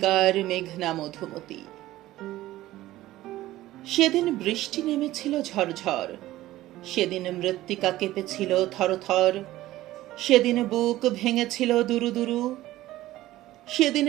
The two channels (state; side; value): quieter; left; 15.8 dB